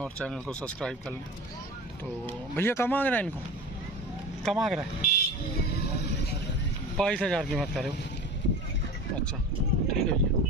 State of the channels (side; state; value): both; normal; correlation 0.33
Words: चैनल को सब्सक्राइब कर लें। तो भैया कम मांग रहा है, इनको कम मांग रहा है 22,000 कीमत करे हो। अच्छा ठीक है